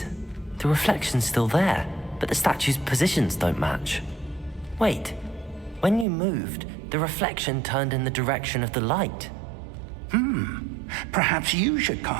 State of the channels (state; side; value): drops out; left; at 6.1 s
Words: The reflection's still there, but the statue's positions don't match. Wait, when you moved, the reflection turned in the direction of the light. Perhaps you should